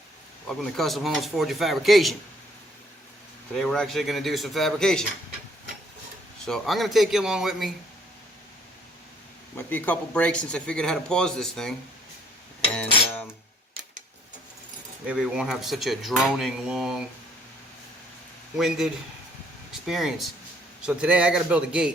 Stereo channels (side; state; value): both; normal; correlation 0.64